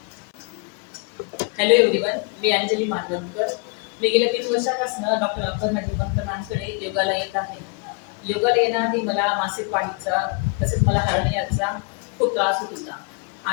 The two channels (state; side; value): quieter; right; 30.9 dB